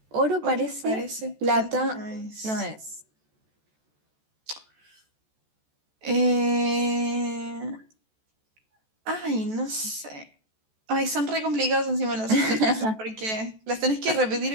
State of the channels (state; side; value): late; left; 14 ms